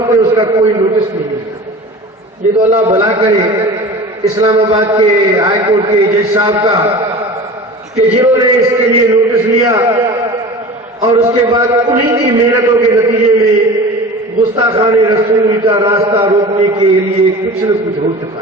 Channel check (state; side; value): normal; both; correlation 0.37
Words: نے اس کا کوئی نوٹس نہیں لیا۔ یہ تو اللہ بھلا کرے اسلام آباد کے ہائی کورٹ کے جج صاحب کا کہ جنہوں نے اس کے لیے نوٹس لیا اور اس کے بعد انہی کی محنتوں کے نتیجے میں گستاخان رسول کا راستہ روکنے کے لیے کچھ نہ کچھ ہو چکا